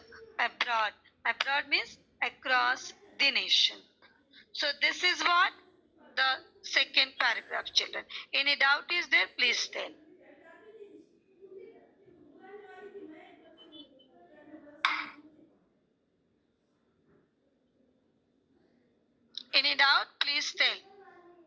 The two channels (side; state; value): both; identical; correlation 1.00